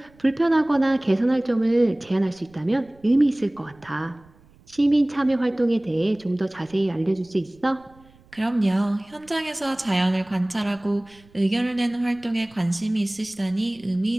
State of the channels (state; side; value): noise; right; rumble, 28 dB below the sound